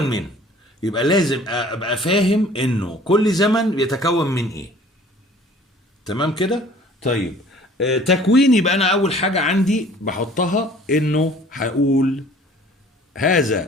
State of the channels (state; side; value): normal; both; correlation 0.51